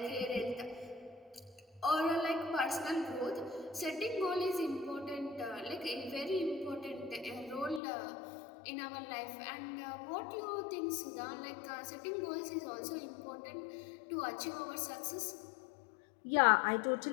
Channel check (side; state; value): right; drops out; at 7.8 s